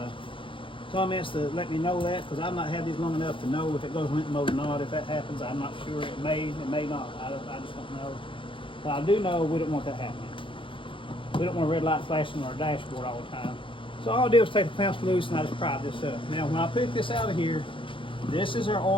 comments to let me know that, because I've not had these long enough to know if it goes limp mode or not. If that happens, I'm not sure. It may not. I just don't know. But I do know we don't want that happening. We don't want a red light flashing on our dashboard all the time. So all I did was take the clamps loose and I just pried this up. Now when I pick this out of here, this is our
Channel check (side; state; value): right; late; 0.25 ms